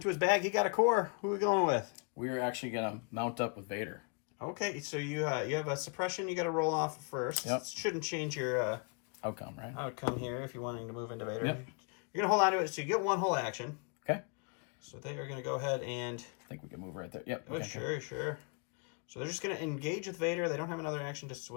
to his bag. He got a core. Who are we going with? We're actually gonna mount up with Vader. Okay, so you have a suppression you got to roll off first. Yep. Shouldn't change your Outcome, right? outcome here if you're wanting to move into Vader. Yep. You're going to hold on to it so you get 1 whole action. Okay. So they are going to go ahead and... I think we can move right there. Yep. Oh, sure. So they're just going to engage with Vader. They don't have another action to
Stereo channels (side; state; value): right; quieter; 36.1 dB